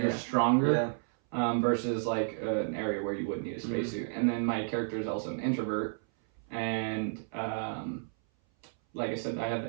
stronger versus like an area where you would need a spacesuit. And then my character is also an introvert, and like I said, I have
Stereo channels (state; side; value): silent; left; 57 dB below the other